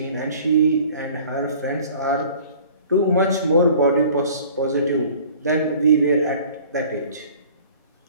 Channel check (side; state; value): both; inverted; correlation -0.49